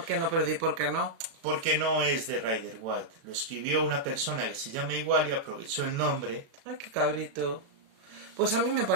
qué no, Perdi? ¿Por qué no? Porque no es de Rider White. Lo escribió una persona que se llama igual y aprovechó el nombre. Ay, qué cabrito. Pues a mí me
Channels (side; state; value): left; late; 36 ms